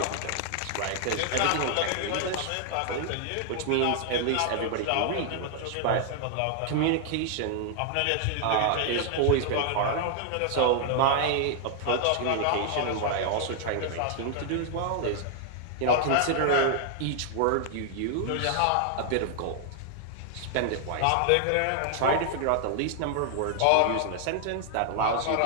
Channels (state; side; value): different; both; correlation 0.00